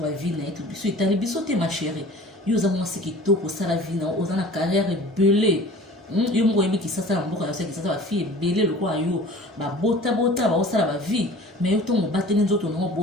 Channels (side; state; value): both; normal; correlation 0.44